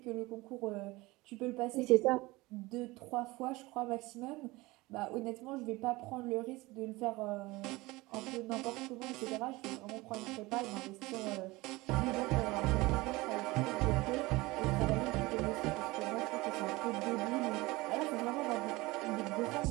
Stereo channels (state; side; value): quieter; left; 21.4 dB